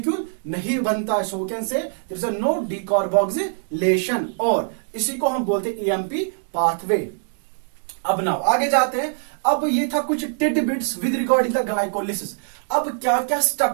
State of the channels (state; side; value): silent; left; digital silence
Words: नहीं बनता है, so we can say there is a no decarboxylation, और इसी को हम बोलते हैं ईएमपी पाथवे। अब नाउ आगे जाते हैं। अब ये था कुछ titbits with regarding the glycolysis. अब क्या क्या